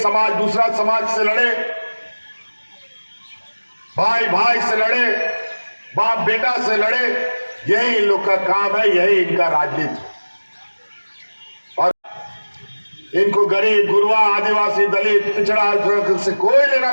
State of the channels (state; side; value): inverted; both; correlation -1.00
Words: दूसरा समाज से लड़े, भाई भाई से लड़े, बाप बेटा से लड़े, यही इन लोग का काम है, यही इनका राजनीति। और इनको गरीब, गुरुआ, आदिवासी, दलित, पिछड़ा से कोई लेना